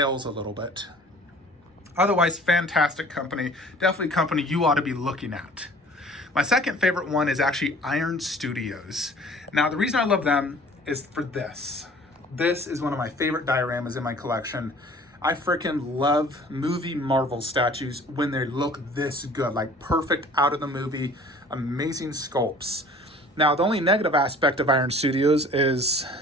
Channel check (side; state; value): both; normal; correlation 0.49